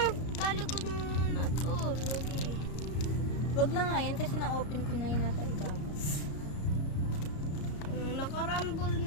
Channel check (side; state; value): right; late; 34 ms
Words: talikod mo na to. Wag na nga yan kasi na-open ko na yun nasa ibabaw. Nakarambol